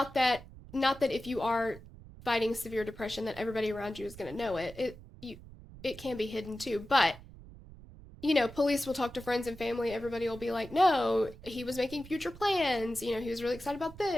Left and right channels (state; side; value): noise; right; rumble, 18 dB below the sound